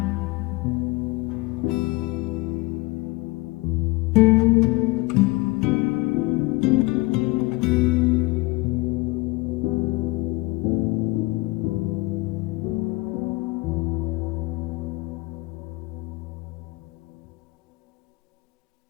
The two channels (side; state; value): right; quieter; 22.6 dB